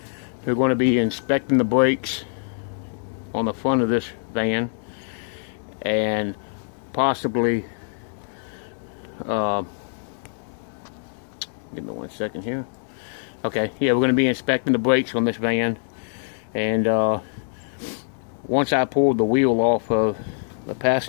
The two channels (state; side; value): silent; right; digital silence